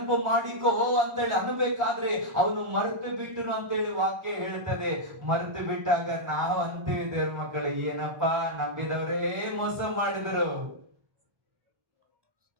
ಮಾಡಿಕೋ ಅಂತೇಳಿ ಅನ್ಬೇಕಾದ್ರೆ ಅವನು ಮರೆತು ಬಿಟ್ಟನು ಅಂತೇಳಿ ವಾಕ್ಯ ಹೇಳ್ತದೆ. ಮರೆತು ಬಿಟ್ಟಾಗ ನಾವು ಅಂತೀವಿ, ದೇವ್ರ ಮಕ್ಕಳೇ, ಏನಪ್ಪಾ ನಂಬಿದವರೇ ಮೋಸ ಮಾಡಿದರು.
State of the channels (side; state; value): left; late; 1.4 ms